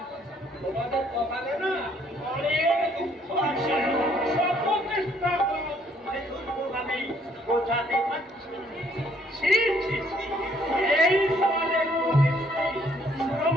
তোমাদের কপালে না অনেক দুঃখ আছে। সব চেষ্টা করো দুর্গভাবে বোঝাতে পারছি। ছি ছি ছি, এই সমাজের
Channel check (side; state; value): both; normal; correlation 0.65